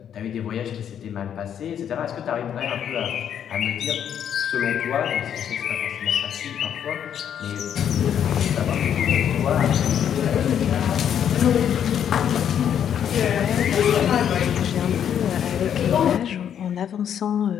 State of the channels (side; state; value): right; quieter; 9.1 dB